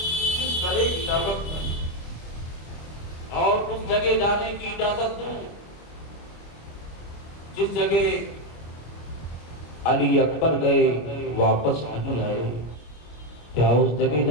کس طرح اجازت دوں اور اس جگہ جانے کی اجازت دوں جس جگہ علی اکبر گئے واپس نہیں آئے؟ کیا اس جگہ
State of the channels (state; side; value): late; right; 25 ms